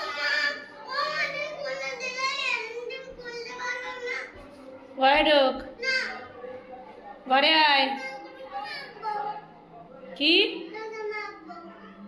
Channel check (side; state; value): both; identical; correlation 1.00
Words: ঘরে ঢোক, ঘরে আয়। কি